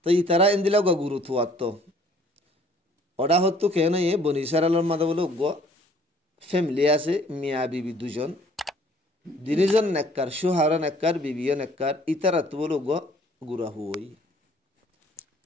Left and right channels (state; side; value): normal; both; correlation 0.57